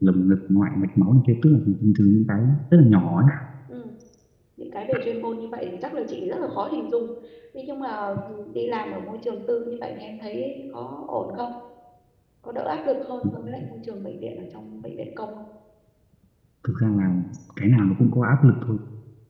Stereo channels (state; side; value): identical; both; correlation 1.00